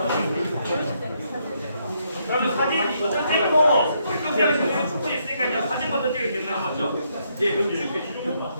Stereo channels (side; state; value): both; inverted; correlation -0.75